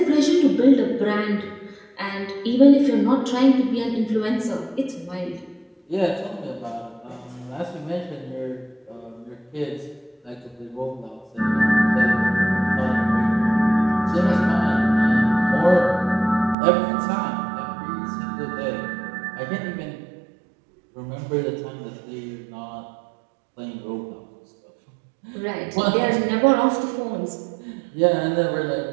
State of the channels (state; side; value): drops out; left; at 16.6 s